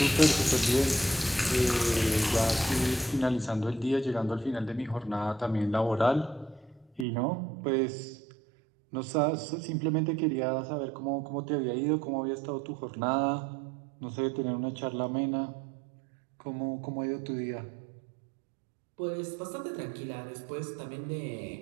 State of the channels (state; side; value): drops out; left; at 7.1 s